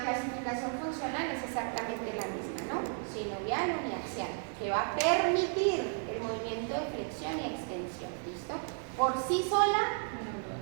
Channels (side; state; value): left; silent; 55 dB below the other